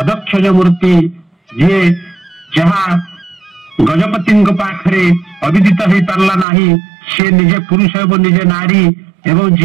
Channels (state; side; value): drops out; left; at 6.5 s